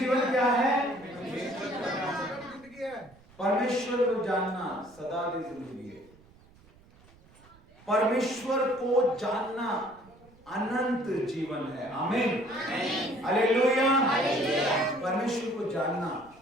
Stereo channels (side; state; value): right; noise; rumble, 27 dB below the sound